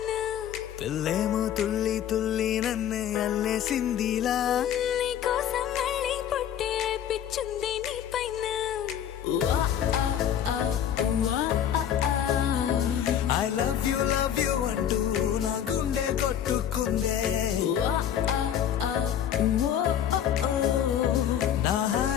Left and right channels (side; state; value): right; quieter; 9.7 dB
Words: పిల్లేమో తుల్లి తుల్లి నన్నే అల్లేసిందిలా నీ కోసం మళ్ళీ పుట్టే పిచ్చుంది నీ పైన ఐ లవ్ యు అంటూ నా గుండె కొట్టుకుందే నా